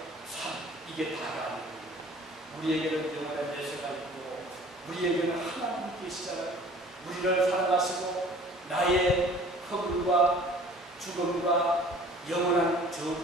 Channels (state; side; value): normal; both; correlation 0.49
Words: 삶, 이게 다가 아닙니다. 우리에게는 영원한 내세가 있고 우리에게는 하나님이 계시잖아요. 우리를 살아가시고 나의 허물과 죽음과 영원한